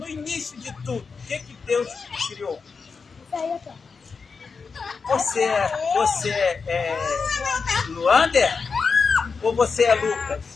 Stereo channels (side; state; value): right; quieter; 5.1 dB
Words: início de tudo, o que Deus criou? Você é Luander? Ou você é